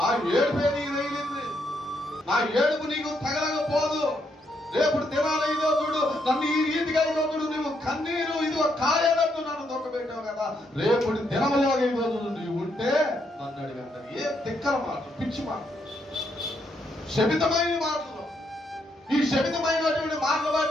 ఏడుపే నీకు తగిలింది, నా ఏడుపు నీకు తగలకపోదు. రేపు దినాలు ఇదో చూడు నన్ను ఈ రీతిగా ఇదో చూడు నువ్వు కన్నీరు ఇదిగో కాయనట్టు నన్ను దొక్కబెట్టావు కదా, రేపు దినములో ఇదో చూడు నీవు ఉంటే నన్ను అడిగి అంటారు. ఏ తిక్కల మాటలు, పిచ్చి మాటలు, శపితమైన మాటలు. ఈ శపితమైనటువంటి మాటలు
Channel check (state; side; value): normal; both; correlation 0.76